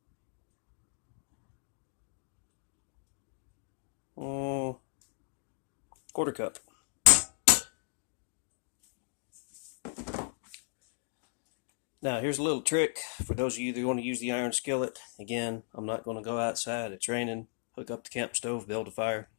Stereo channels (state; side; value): silent; right; 54 dB below the other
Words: Mm, quarter cup. Now here's a little trick for those of you that want to use the iron skillet. Again, I'm not going to go outside. It's raining. Hook up the camp stove, build a fire.